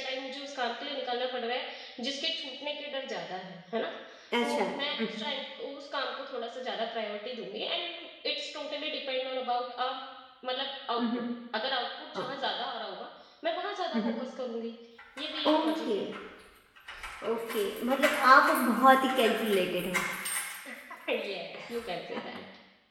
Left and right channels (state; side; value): identical; both; correlation 1.00